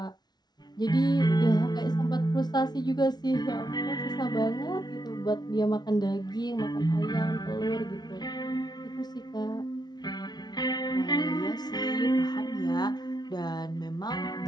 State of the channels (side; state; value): right; late; 0.20 ms